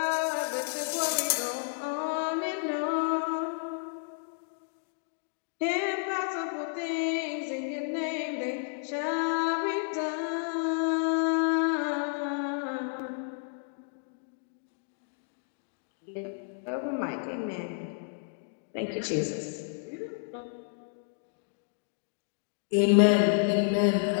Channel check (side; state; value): right; silent; digital silence